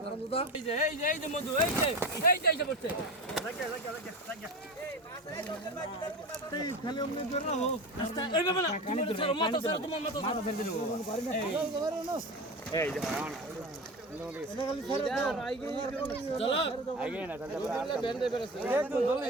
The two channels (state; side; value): normal; both; correlation 0.28